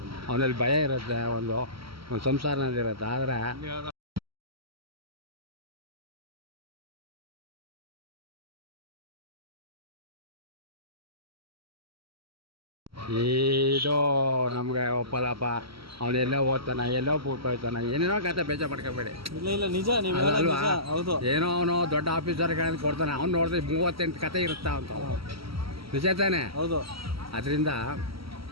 ಅವನಲ್ಲಿ ಭಯ ಇರುತ್ತೆ, ಒಂದು ಸಂಸಾರನಲ್ಲಿರುತ್ತೆ. ಆದರೆ ಇದು ನಮ್ಗೆ ಒಪ್ಪಲ್ಲಪ್ಪ. ಅವನೆಲ್ಲೋ ಓದ್ತಾನೆ, ಎಲ್ಲೋ ಬಿಟ್ಟು ಹೋಗ್ತಾನೆ, ಏನೇನೋ ಕತೆ ಬೇಜ ಮಾಡ್ಕೋಬೇಡಿ. ಇಲ್ಲ ನಿಜ ಅಲ್ವಾ? ಹೌದು. ಏನೋ ಅವನು ದೊಡ್ಡ ಆಫೀಸರ್ಗಳನ್ನು ಕೊಡ್ತಾನೆ, ಅವ್ನು ನೋಡಿದ್ರೆ 38 ಕತೆ ಇರುತ್ತಾ ಅಂತ. ನಿಜ ತಾನೆ? ಹೌದು. ಅದರಿಂದ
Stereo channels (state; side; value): late; left; 0.75 ms